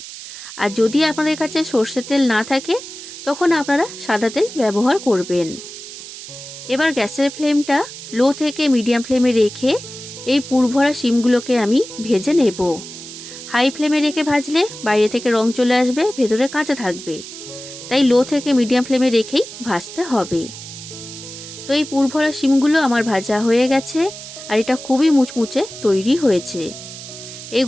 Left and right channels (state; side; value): noise; right; hiss, 13 dB below the sound